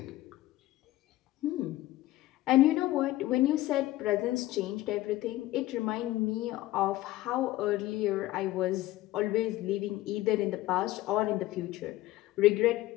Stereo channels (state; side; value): quieter; right; 16.3 dB